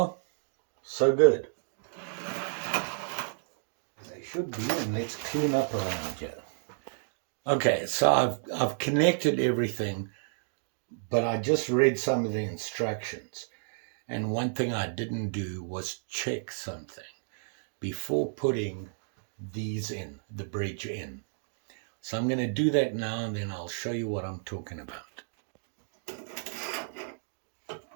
so good. They should be, and let's clean up around here. Okay, so I've connected everything, but I just read some of the instructions. And one thing I didn't do was check something before putting these in, the bridge in. So I'm going to do that now, and then I'll show you what I'm talking about.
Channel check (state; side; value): silent; left; digital silence